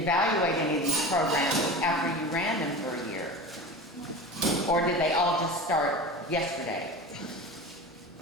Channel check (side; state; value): both; normal; correlation 0.31